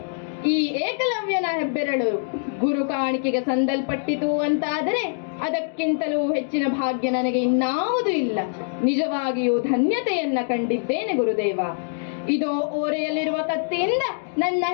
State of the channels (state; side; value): silent; right; digital silence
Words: ಈ ಏಕಲವ್ಯನ ಹೆಬ್ಬೆರಳು ಗುರು ಕಾಣಿಕೆಗೆ ಸಂದಲ್ಪಟ್ಟಿತು ಅಂತಾದರೆ ಅದಕ್ಕಿಂತಲೂ ಹೆಚ್ಚಿನ ಭಾಗ್ಯ ನನಗೆ ಇನ್ನಾವುದೂ ಇಲ್ಲ. ನಿಜವಾಗಿಯೂ ಧನ್ಯತೆಯನ್ನ ಕಂಡಿದ್ದೇನೆ ಗುರುದೇವ. ಇದೋ ಓರೆಯಲ್ಲಿರುವ ಕತ್ತಿಯಿಂದ ನನ್ನ